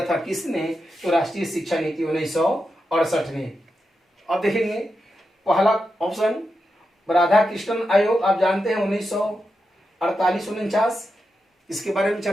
था किसने? तो राष्ट्रीय शिक्षा नीति 1968 ने। अब देखेंगे पहला ऑप्शन राधाकृष्णन आयोग, आप जानते हैं 1948-49, इसके बारे में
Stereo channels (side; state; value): both; normal; correlation 0.88